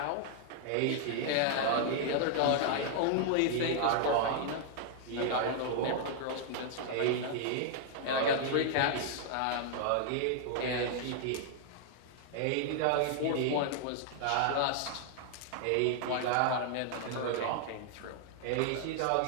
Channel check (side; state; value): both; different; correlation 0.00